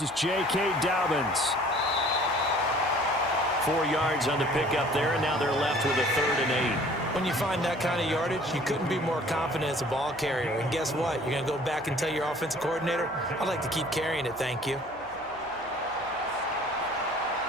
is J.K. Dobbins. 4 yards on the pickup there, and now they're left with a 3rd and 8. When you find that kind of yardage, you couldn't be more confident as a ball carrier. And guess what? You're going to go back and tell your offensive coordinator, I'd like to keep carrying it, thank you.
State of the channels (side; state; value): right; noise; hum, 25 dB below the sound